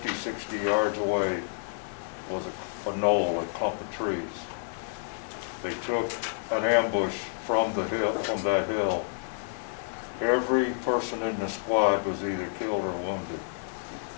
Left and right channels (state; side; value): silent; right; digital silence